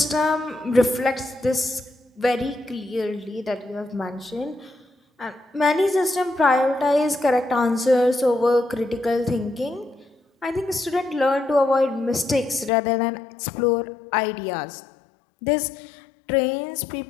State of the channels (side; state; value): right; drops out; at 12.7 s